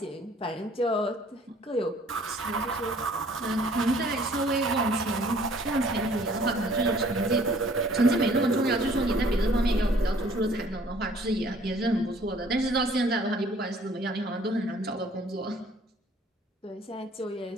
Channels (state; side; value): normal; both; correlation 0.57